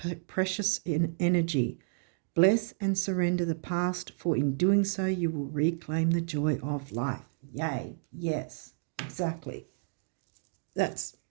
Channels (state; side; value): silent; left; digital silence